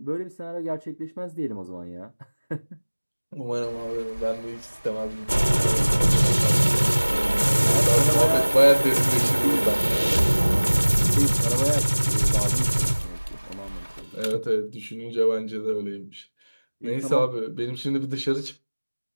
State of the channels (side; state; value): both; inverted; correlation -1.00